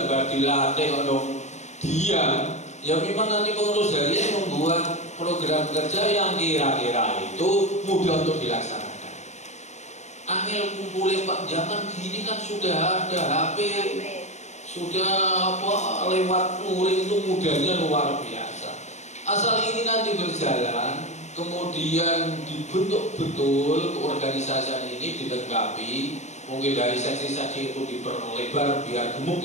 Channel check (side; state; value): right; late; 0.33 ms